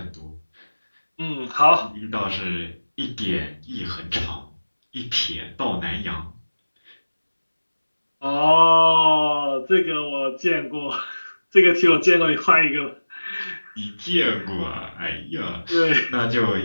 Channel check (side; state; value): both; inverted; correlation -1.00